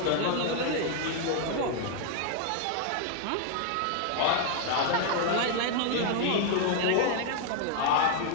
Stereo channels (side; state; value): both; different; correlation 0.00